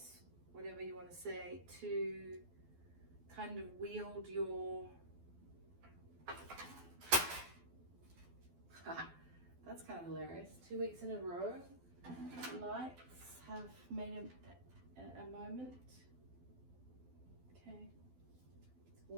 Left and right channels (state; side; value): late; left; 12 ms